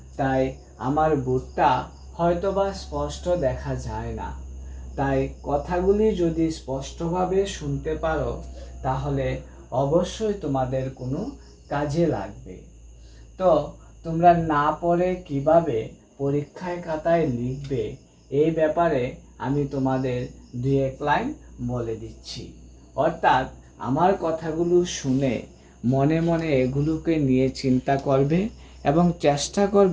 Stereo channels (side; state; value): both; identical; correlation 1.00